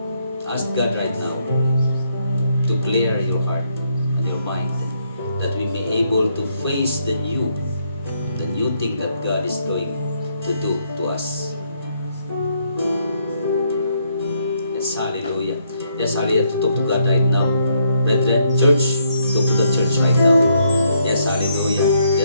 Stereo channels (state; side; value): inverted; both; correlation -0.74